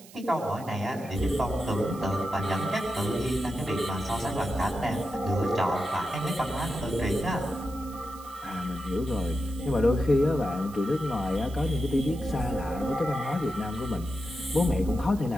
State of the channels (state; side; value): noise; right; hiss, 21 dB below the sound